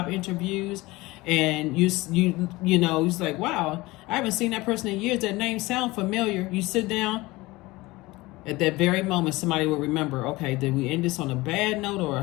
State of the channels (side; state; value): right; quieter; 20.8 dB